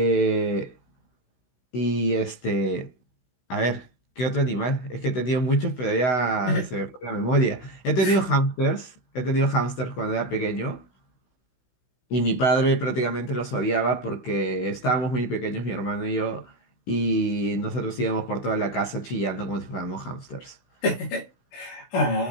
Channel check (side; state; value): right; late; 16 ms